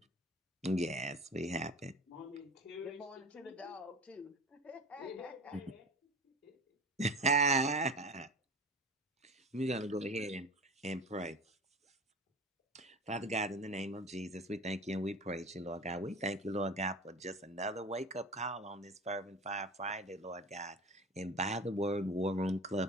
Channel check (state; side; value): normal; both; correlation 0.35